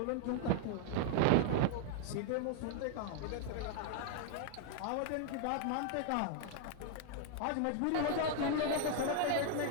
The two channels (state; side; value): different; both; correlation 0.00